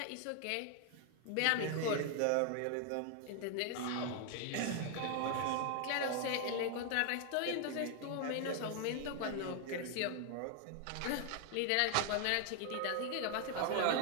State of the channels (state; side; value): different; both; correlation 0.00